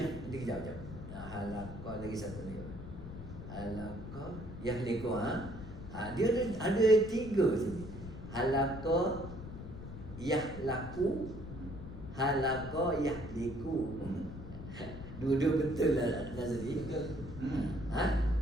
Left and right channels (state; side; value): noise; left; rumble, 11 dB below the sound